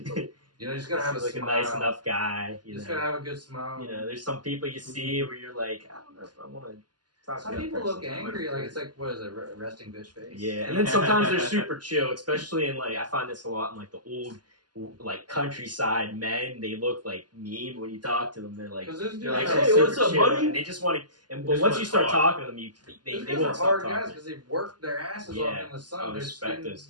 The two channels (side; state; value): left; late; 0.70 ms